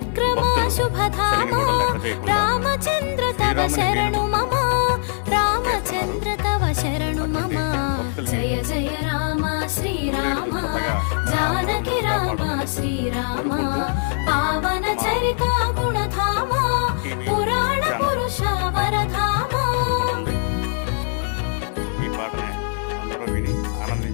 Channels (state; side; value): silent; right; digital silence